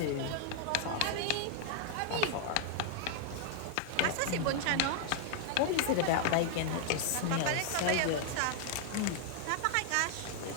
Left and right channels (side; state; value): both; different; correlation 0.00